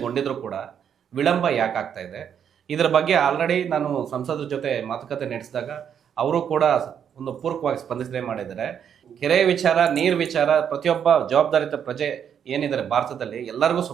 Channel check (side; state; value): left; quieter; 8.3 dB